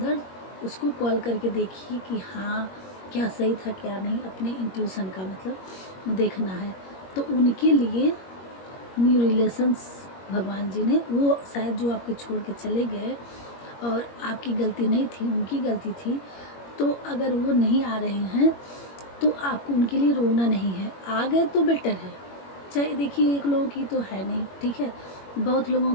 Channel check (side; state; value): right; late; 21 ms